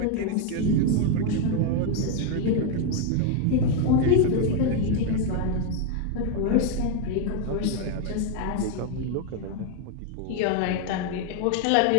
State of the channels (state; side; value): different; both; correlation 0.01